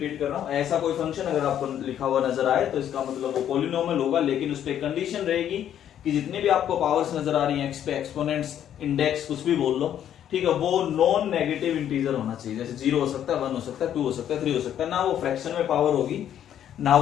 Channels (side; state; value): right; quieter; 10.3 dB